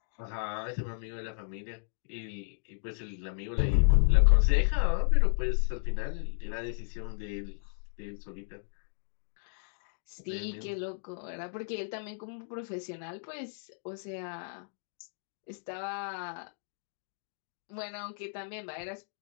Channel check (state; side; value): silent; right; digital silence